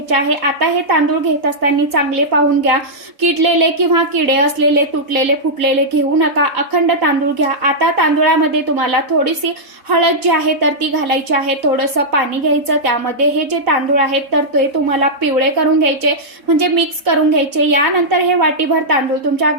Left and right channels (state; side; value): late; left; 4.0 ms